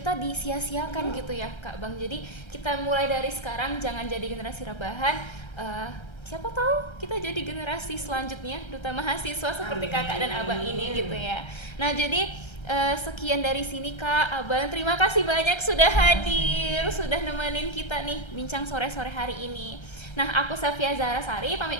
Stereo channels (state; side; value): late; right; 1.3 ms